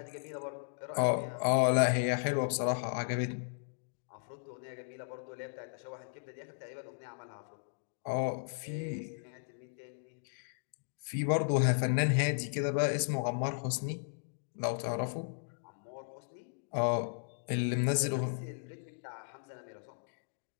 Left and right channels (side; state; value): right; silent; digital silence